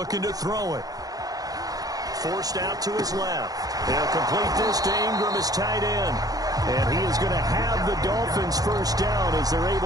to throw it. Forced out to his left. They'll complete this to Ingram as tight end. And he is going to have the Dolphins first down as they're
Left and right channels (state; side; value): late; left; 0.18 ms